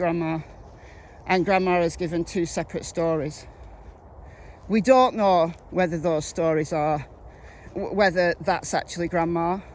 and Grandma has given two separate stories. We don't know whether those stories are, whether that's actually Grandma.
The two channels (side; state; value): both; identical; correlation 1.00